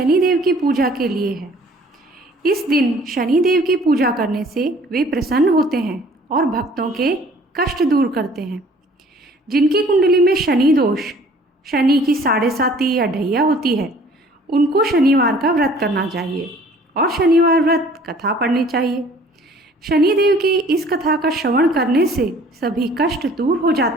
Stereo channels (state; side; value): normal; both; correlation 0.53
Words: की पूजा के लिए है। इस दिन शनिदेव की पूजा करने से वे प्रसन्न होते हैं और भक्तों के कष्ट दूर करते हैं। जिनकी कुंडली में शनि दोष, शनि की 7.5 या ढैया होती है, उनको शनिवार का व्रत करना चाहिए और शनिवार व्रत कथा पढ़नी चाहिए। शनिदेव की इस कथा का श्रवण करने से सभी कष्ट दूर हो